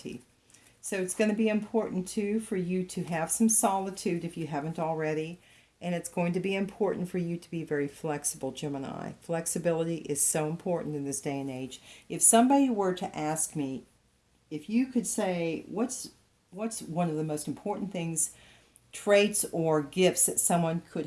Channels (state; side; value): identical; both; correlation 1.00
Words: So it's going to be important too for you to have some solitude if you haven't already. And it's going to be important for you to be very flexible, Gemini. Flexibility is so important in this day and age. If somebody were to ask me, if you could say, what's one of the most important things, traits or gifts that someone could